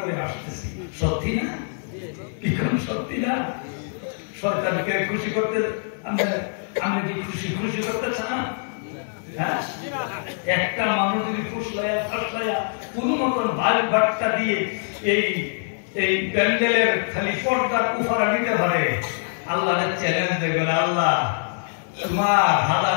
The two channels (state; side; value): silent; right; 63 dB below the other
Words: আসতেছি। সত্যি না? কি কোন সত্যি না? শয়তানকে খুশি করতে আমরা কি খুশি করতে চান? একটা মানুষ যদি ফুসলাইয়া ফাসলাইয়া কোন মতন ভাই বাট্টা দিয়ে এই প্যান্ডেলের খালি পর্দার উফারা দিতে পারে, আল্লাহর চ্যালেঞ্জ দেখবেন, আল্লাহ তোমার